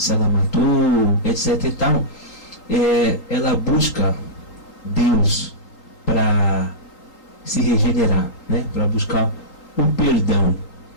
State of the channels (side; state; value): right; late; 3.8 ms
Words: ela matou, etc e tal, ela busca Deus para se regenerar, né? Para buscar o perdão.